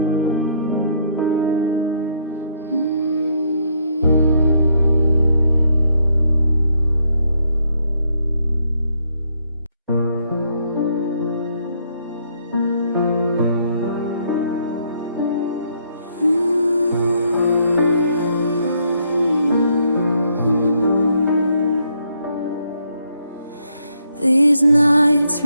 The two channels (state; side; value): inverted; both; correlation -0.71